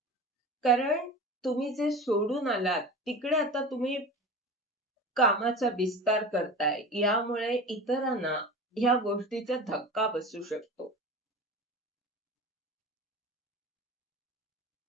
कारण तुम्ही जे सोडून आलात, तिकडे आता तुम्ही कामाचा विस्तार करताय. यामुळे इतरांना ह्या गोष्टीचा धक्का बसू शकतो.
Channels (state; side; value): normal; both; correlation 0.32